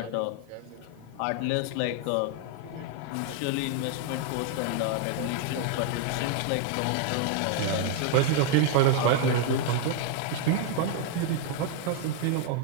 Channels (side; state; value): both; different; correlation 0.00